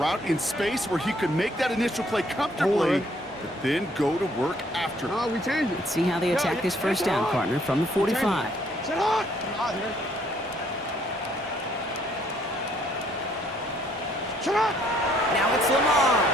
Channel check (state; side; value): normal; both; correlation 0.65